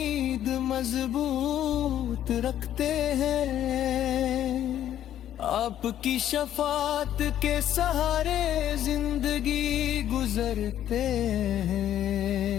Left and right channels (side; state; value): right; quieter; 11.3 dB